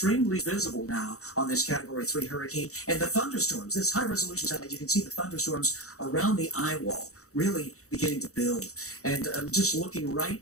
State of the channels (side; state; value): right; late; 0.65 ms